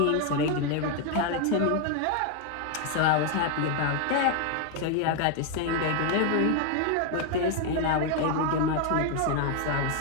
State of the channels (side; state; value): both; different; correlation 0.00